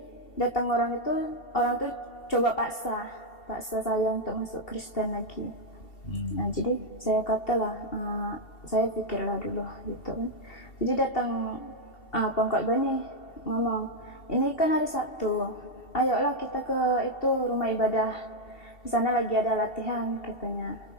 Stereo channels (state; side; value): late; right; 2.7 ms